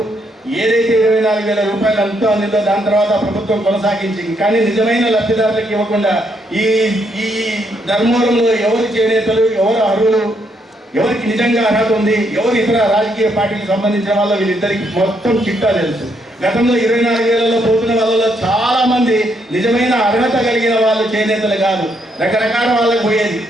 ఏదైతే 24,000 రూపాయలు అంతా అందిందో దాని తర్వాత ప్రభుత్వం కొనసాగించింది. కానీ నిజమైన లబ్ధిదారులకు ఇవ్వకుండా ఈ ధర్మవరంలో ఎవరు చేనేతలు, ఎవరు అర్హులు, ఎవరికి నిజంగా అర్హత ఉంది, ఎవరు ఇతర రాజకీయ పార్టీలకు సంబంధించిన వాళ్ళు వీళ్ళిద్దరికి మొత్తం చిట్టా తెలుసు. గతంలో 24,000లో పోతున్న వాళ్ళలో చాలా మంది నిజమైన అర్హత కలిగిన వాళ్ళు చేనేతలు కాదు, రకరకాల వాళ్ళకి పోయేది,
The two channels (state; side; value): normal; both; correlation 0.75